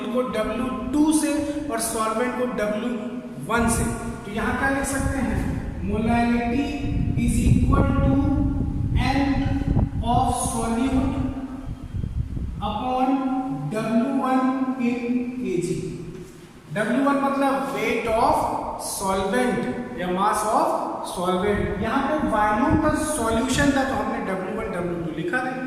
को W2 से और सॉल्वेंट को W1 से। तो यहां क्या लिख सकते हैं, molarity is equal to N of solute upon W1 in KG. W1 मतलब वेट ऑफ सॉल्वेंट या मास ऑफ सॉल्वेंट। यहाँ पे वॉल्यूम का सॉल्यूशन था तो हमने W1 W2 लिखा था,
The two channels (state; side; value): identical; both; correlation 1.00